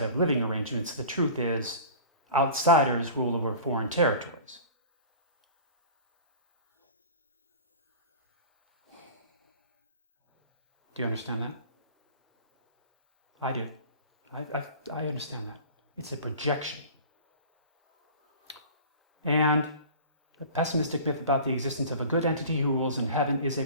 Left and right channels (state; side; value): inverted; both; correlation -0.40